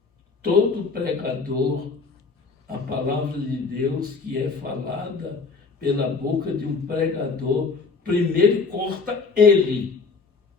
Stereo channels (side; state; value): right; quieter; 4.5 dB